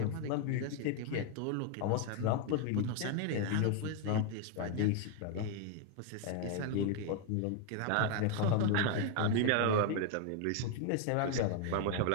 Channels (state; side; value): different; both; correlation 0.01